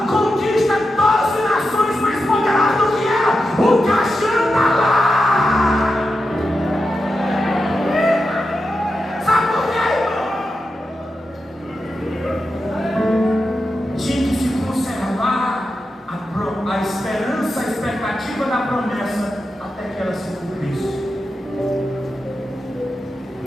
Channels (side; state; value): both; normal; correlation 0.89